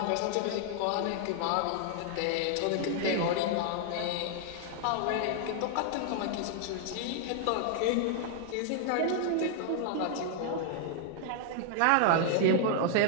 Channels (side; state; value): both; different; correlation 0.00